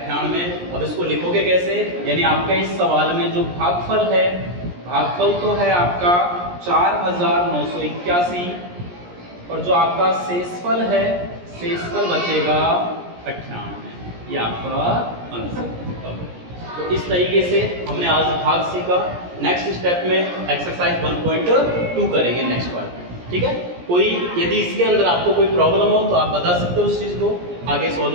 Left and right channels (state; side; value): late; left; 17 ms